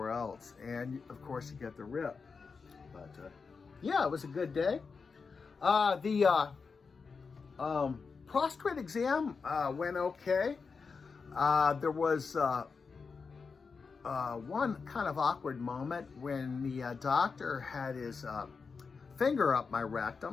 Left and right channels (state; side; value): quieter; right; 5.1 dB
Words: else, and of course you get the rip. But yeah, it was a good day. The prostate exam went okay. There was one kind of awkward moment when the doctor had his finger up my